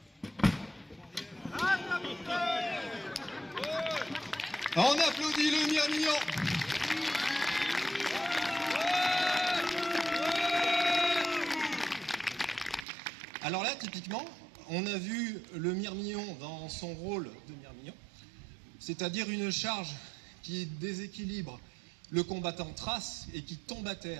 On applaudit le Mirmillon. Alors là, typiquement, on a vu le Mirmillon dans son rôle de Mirmillon, c'est-à-dire une charge qui déséquilibre le combattant thrace et qui tombe à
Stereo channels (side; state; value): left; drops out; at 12.9 s